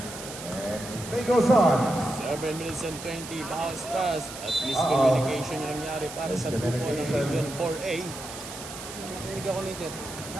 And play goes on. 7 minutes and 20. Bounce pass. At miscommunication yung nangyari para sa grupo ng Region 4A. Narinig ako ni sir.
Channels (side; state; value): right; noise; hiss, 11 dB below the sound